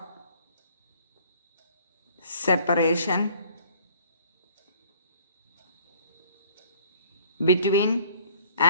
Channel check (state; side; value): inverted; both; correlation -0.56